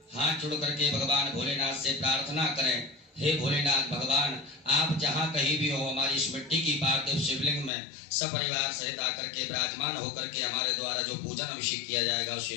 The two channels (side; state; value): right; drops out; at 7.7 s